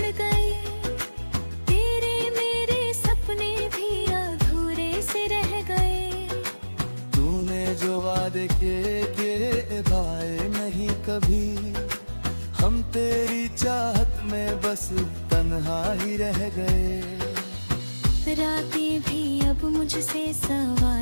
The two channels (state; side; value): inverted; both; correlation -1.00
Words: गए। तेरे मेरे सपने भी अधूरे से रह गए। तूने जो वादे किए भाए नहीं कभी। हम तेरी चाहत में बस तन्हा ही रह गए। रातें भी अब मुझसे